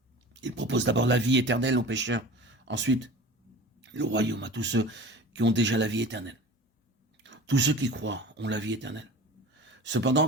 Il propose d'abord la vie éternelle aux pécheurs, ensuite le royaume à tous ceux qui ont déjà la vie éternelle. Tous ceux qui croient ont la vie éternelle.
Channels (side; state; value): both; normal; correlation 0.38